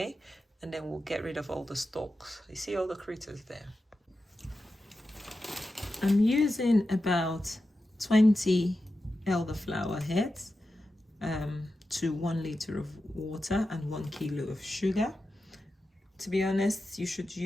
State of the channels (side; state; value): both; normal; correlation 0.91